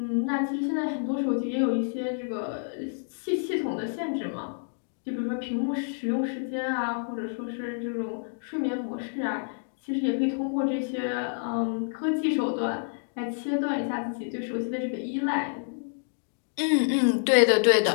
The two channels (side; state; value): right; silent; digital silence